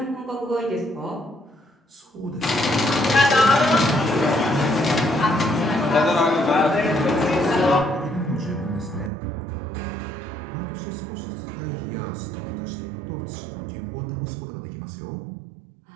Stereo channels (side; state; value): left; drops out; at 9.1 s